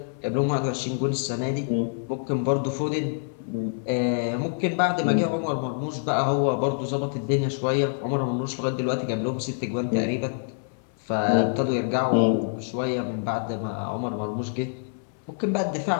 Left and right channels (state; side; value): silent; right; 59 dB below the other